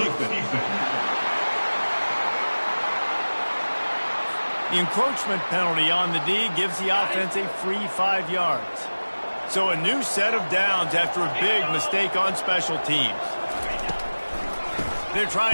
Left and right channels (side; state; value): both; inverted; correlation -1.00